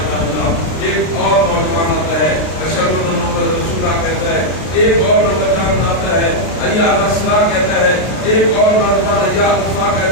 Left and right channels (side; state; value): right; late; 32 ms